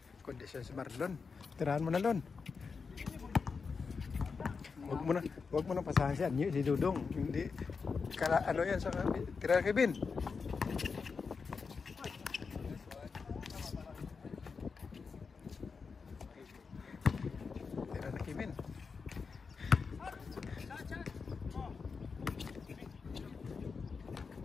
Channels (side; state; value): right; quieter; 5.1 dB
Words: Kondisyon si Marlon. Tirahan mo na, Lon. Huwag mo na pasahan si Anyo, si Dudong. Hindi, ano yan sa tirahan kay Bin. Tirahan na kay Bin.